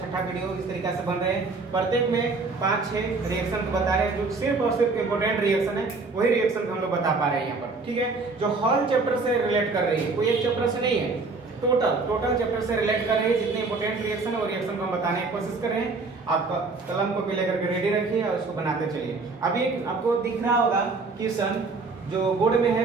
वीडियो इस तरीके से बन रहे हैं। प्रत्येक में 5-6 रिएक्शन को बता रहे हैं जो सिर्फ और सिर्फ इम्पोर्टेंट रिएक्शन है, वही रिएक्शन को हम लोग बता पा रहे हैं यहाँ पर। ठीक है, जो हॉल चैप्टर से रिलेट कर रही है, कोई एक चैप्टर से नहीं है, टोटल चैप्टर से रिलेट कर रही है। जितने इंपोर्टेंट रिएक्शन है वो रिएक्शन को हम बताने की कोशिश कर रहे हैं। आपका कलम को लेकर के रेडी रखिए और उसको बनाते चलिए। अभी आपको दिख रहा होगा क्वेश्चन जो बोर्ड में है,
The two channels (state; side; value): quieter; left; 3.9 dB